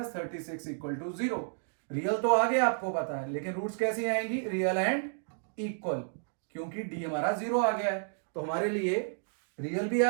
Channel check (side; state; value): left; silent; digital silence